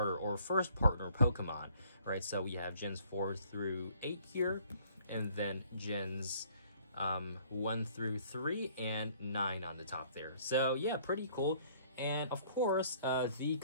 or first partner Pokemon, right? So we have gens 4 through 8 here, and then gens 1 through 3 and 9 on the top there. So yeah, pretty cool. And of course, the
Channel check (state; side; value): inverted; both; correlation -0.59